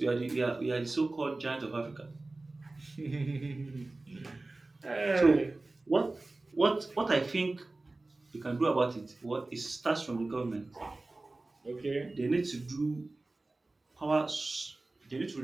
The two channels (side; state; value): left; quieter; 3.1 dB